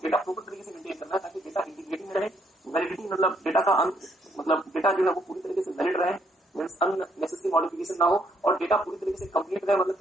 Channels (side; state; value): both; normal; correlation 0.71